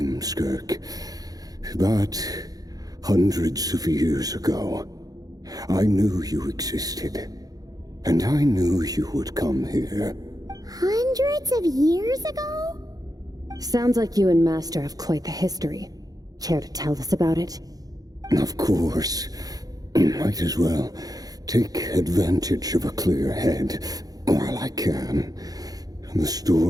Skirk. But hundreds of years ago, I knew you existed. And I knew you would come here. Hundreds of years ago? Sounds like you and Master have quite the history. Care to tell us about it? Of course. Might as well take advantage of a clear head while I can. The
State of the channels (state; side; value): late; left; 0.18 ms